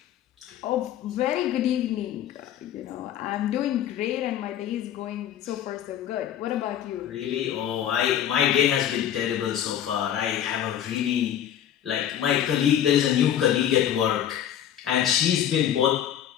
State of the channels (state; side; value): quieter; right; 10.5 dB